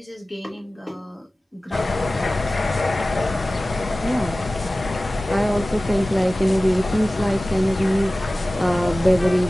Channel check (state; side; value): normal; both; correlation 0.97